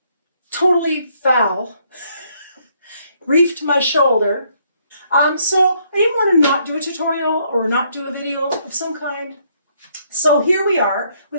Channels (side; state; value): both; inverted; correlation -0.70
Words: totally fell, reefed my shoulder. So I didn't want to not do a tutorial or not do a video of some kind. So here we are